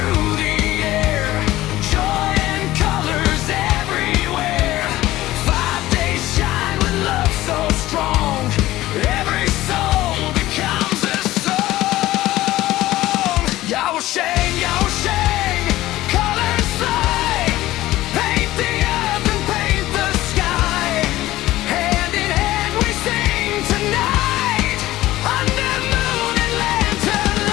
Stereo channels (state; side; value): quieter; right; 16.2 dB